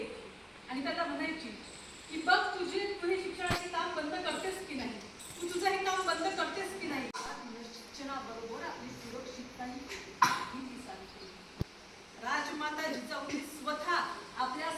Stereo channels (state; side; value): identical; both; correlation 1.00